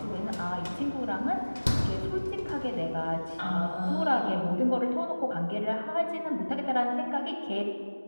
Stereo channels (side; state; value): both; inverted; correlation -1.00